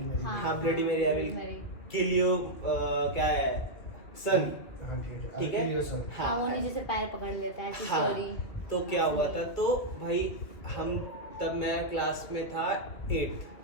हाँ ब्लडी मेरी आई विल किल यू, क्या है, सन, ठीक है। हाँ, वो नीचे से पैर पकड़ लेता है, ऐसी स्टोरी। तो क्या हुआ था, तो भाई हम तब मैं क्लास में था 8,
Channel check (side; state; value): right; late; 2.5 ms